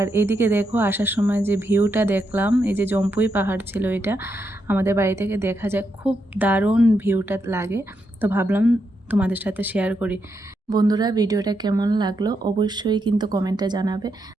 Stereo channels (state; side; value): normal; both; correlation 0.82